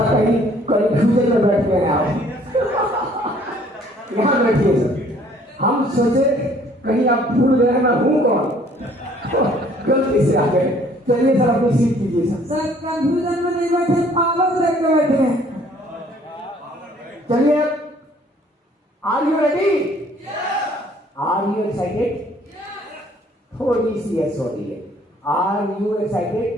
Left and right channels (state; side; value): normal; both; correlation 0.59